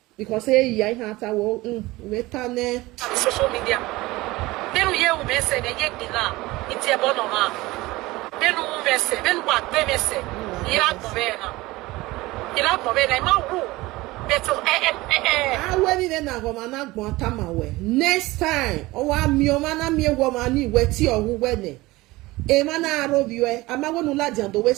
Because I had a walk with on social media. Then we hear me say the yet dinner, it's a bonoma. Then we say, then what they say, Iraq Novena. Iraq Novena, my room. Better, I went in a woman, not Guantamaway. Next time, oh, I'm your man, me woman, wet your who wedding. A man, I rob you, I'm not going to lie on the way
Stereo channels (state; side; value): quieter; left; 20.0 dB